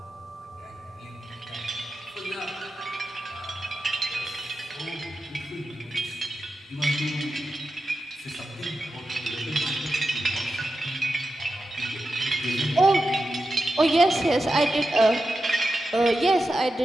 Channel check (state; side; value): normal; both; correlation 0.91